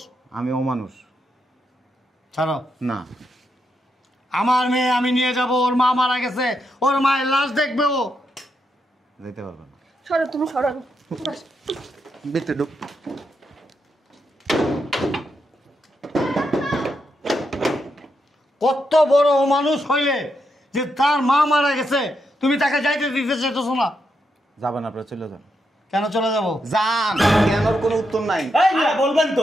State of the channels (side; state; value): both; normal; correlation 0.82